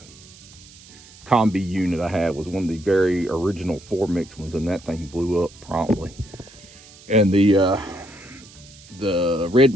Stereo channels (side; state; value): right; noise; hiss, 22 dB below the sound